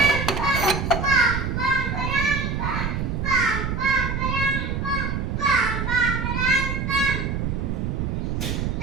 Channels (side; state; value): right; noise; rumble, 1 dB below the sound